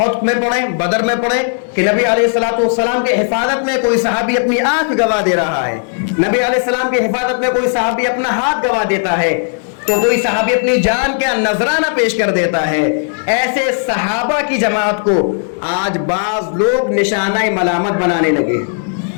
میں پڑھیں، بدر میں پڑھیں کہ نبی علیہ الصلوۃ والسلام کے حفاظت میں کوئی صحابی اپنی آنکھ گوا دے رہا ہے، نبی علیہ السلام کی حفاظت میں کوئی صحابی اپنا ہاتھ گوا دیتا ہے، تو کوئی صحابی اپنی جان کا نذرانہ پیش کر دیتا ہے۔ ایسے صحابہ کی جماعت کو آج بعض لوگ نشانہ ملامت بنانے لگے۔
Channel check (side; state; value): right; silent; digital silence